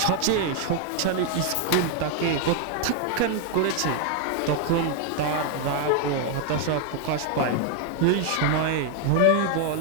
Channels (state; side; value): different; both; correlation 0.00